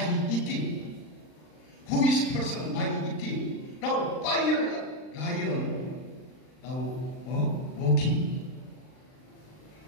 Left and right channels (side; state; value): right; late; 39 ms